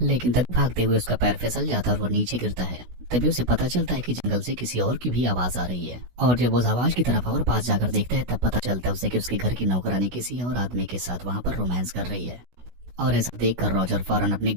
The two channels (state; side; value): late; left; 16 ms